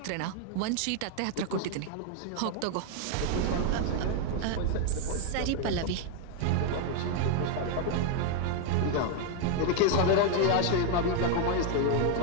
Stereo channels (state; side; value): different; both; correlation 0.00